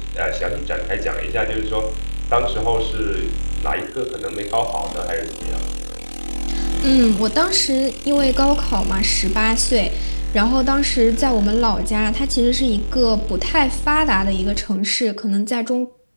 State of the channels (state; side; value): inverted; both; correlation -1.00